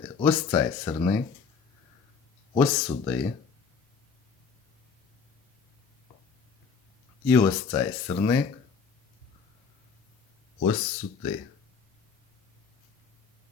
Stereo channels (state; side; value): quieter; right; 5.5 dB